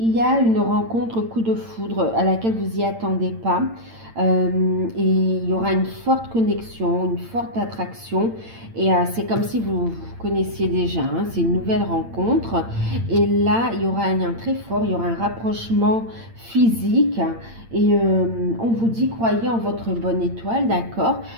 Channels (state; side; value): late; left; 8.8 ms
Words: y a une rencontre coup de foudre à laquelle vous n'y attendez pas. et il y aura une forte connexion, une forte attraction et c'est comme si vous connaissiez déjà, hein, c'est une nouvelle rencontre et là il y aura un lien très fort, il y aura un rapprochement physique et on vous dit croyez en votre bonne étoile, d'accord?